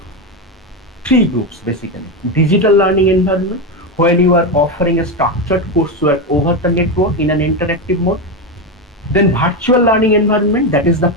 three groups basically: digital learning environment, when you are offering a structured coursework over the network in an interactive mode. Then virtual learning environment, that is the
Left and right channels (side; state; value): both; normal; correlation 0.12